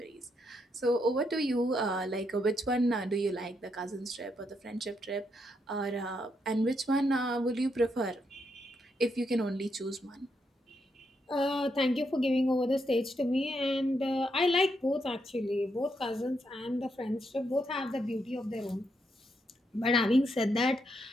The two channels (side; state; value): both; normal; correlation 0.79